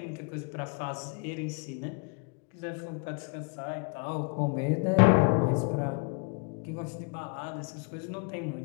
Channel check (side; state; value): right; quieter; 36.5 dB